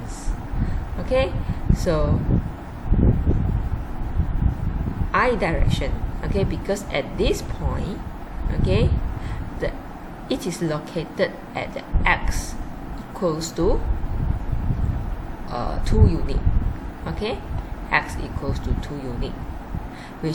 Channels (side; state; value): both; identical; correlation 1.00